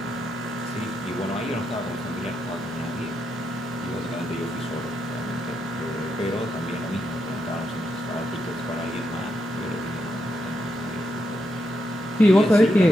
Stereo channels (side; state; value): both; normal; correlation 0.82